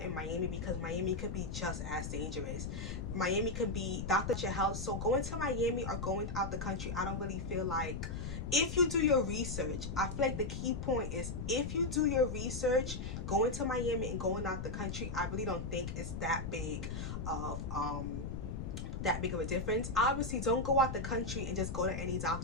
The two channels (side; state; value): left; noise; rumble, 5 dB below the sound